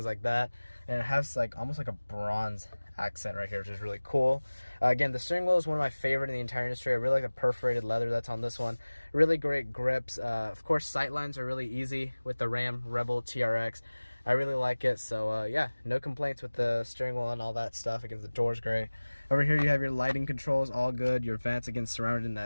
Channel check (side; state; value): both; inverted; correlation -1.00